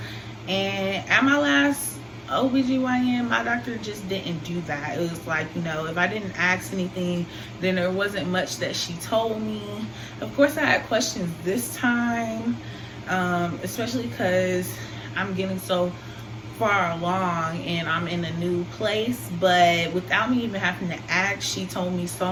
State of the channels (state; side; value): identical; both; correlation 1.00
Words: And at my last OBGYN, my doctor just didn't do that. It was like, if I didn't ask anything, then there wasn't much that she told me. Of course, I had questions this time, especially because I'm getting so far along and I'm in a new place. But without me even having to ask, she told me so